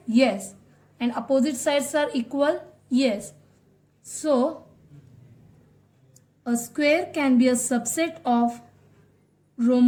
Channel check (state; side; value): identical; both; correlation 1.00